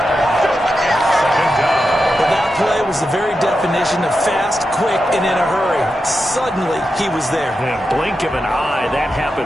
Well, that play was the very definition of fast, quick, and in a hurry. Suddenly, he was there. Yeah, blink of an eye, that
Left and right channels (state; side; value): normal; both; correlation 0.89